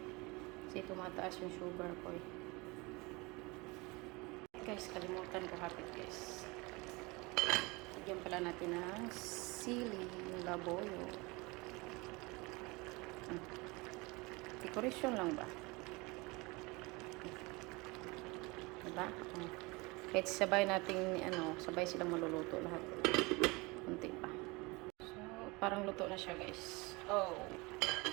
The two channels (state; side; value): quieter; left; 25.2 dB